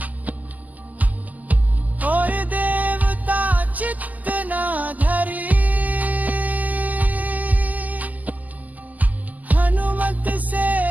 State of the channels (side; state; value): left; late; 0.080 ms